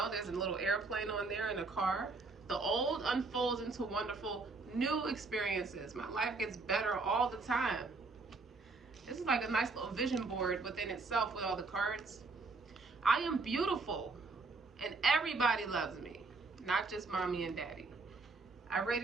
there's a little airplane on there and a car. The old unfolds into wonderful new experiences. My life gets better all the time. This is like a nice little vision board within itself with all the cards. I am beautiful and everybody loves me, not just mommy and daddy. I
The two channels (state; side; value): quieter; left; 3.8 dB